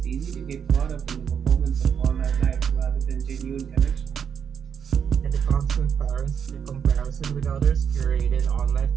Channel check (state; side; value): quieter; left; 7.5 dB